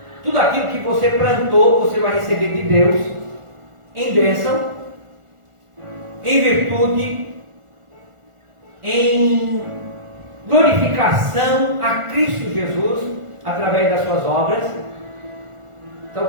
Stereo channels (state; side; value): late; left; 1.4 ms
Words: Tudo aquilo que você plantou, você vai receber de Deus em bênção, em virtude, em glorificação a Cristo Jesus através das suas obras. Então,